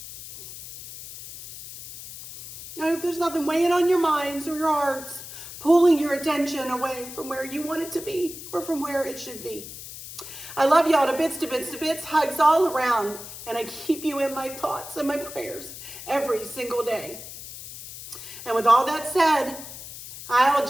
I hope there's nothing weighing on your minds or your hearts, pulling your attention away from where you want it to be or from where it should be. I love y'all to bits, to bits, to bits, hugs all around, and I keep you in my thoughts and my prayers every single day. And with all that said, I'll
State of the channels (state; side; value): noise; left; hiss, 13 dB below the sound